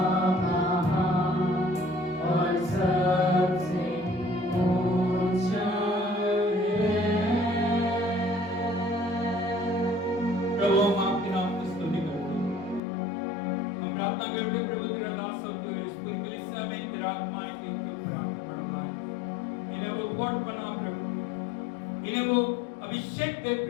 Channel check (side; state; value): right; drops out; at 12.8 s